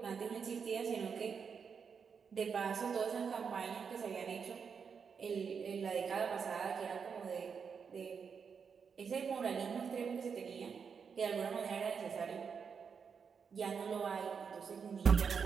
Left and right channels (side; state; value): left; quieter; 6.2 dB